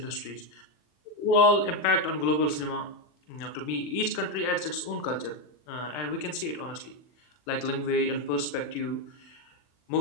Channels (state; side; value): late; right; 40 ms